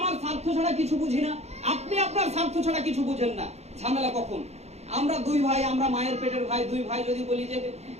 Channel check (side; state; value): left; late; 0.31 ms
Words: স্বার্থ ছাড়া কিছু বুঝি না, আপনি আপনার স্বার্থ ছাড়া কিছু বুঝেন না, ঝামেলা কখন? আমরা দুই ভাই, আমরা মায়ের পেটের ভাই, দুই ভাই যদি বলি যে